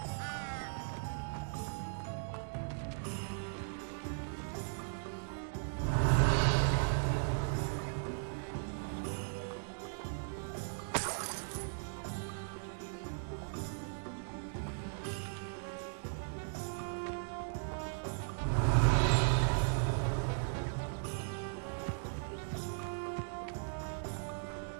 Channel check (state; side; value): silent; left; digital silence